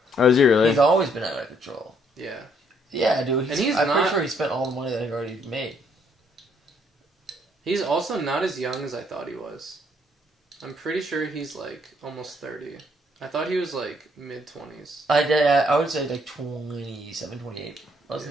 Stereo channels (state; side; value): normal; both; correlation 0.68